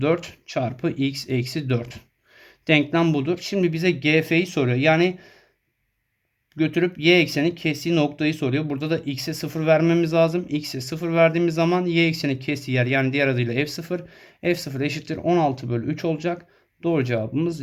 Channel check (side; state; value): both; identical; correlation 1.00